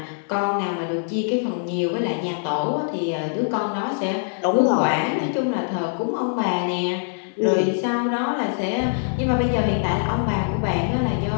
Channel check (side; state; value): right; silent; digital silence